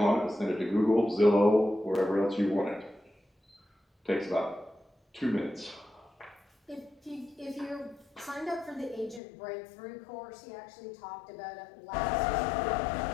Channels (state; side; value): drops out; right; at 9.2 s